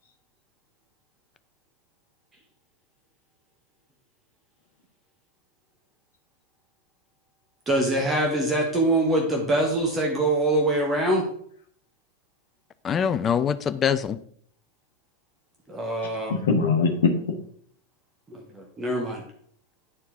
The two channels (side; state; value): both; normal; correlation 0.16